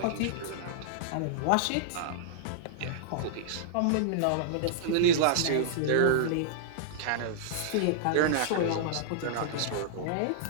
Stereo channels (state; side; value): different; both; correlation -0.02